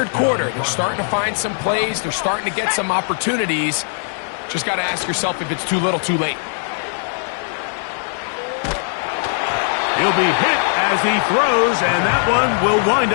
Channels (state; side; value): silent; right; 66 dB below the other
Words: quarter, they're starting to find some plays. They're starting to get some opportunities. Just got to ask yourself if it's too little, too late. He'll be hit as he throws, and that one will wind